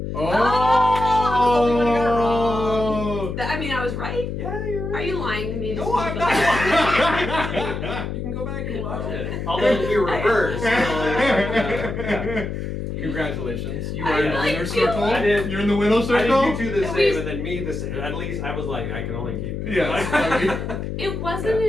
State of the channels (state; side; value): noise; left; hum, 5 dB below the sound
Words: Oh! I mean, I was right. yeah, you're Are right. you lying to me? No, I'm not. You can go back and watch it. Although it'll be reversed. So, yeah. Congratulations. You I are in the like winner you. circle. I did. You're in the winner I circle? did you two the At same least- and then me the same. At least I was like, I can only keep. Yes, I mean- It wasn't